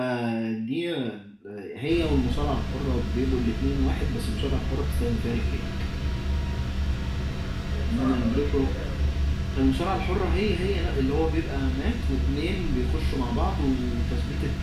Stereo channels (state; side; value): identical; both; correlation 1.00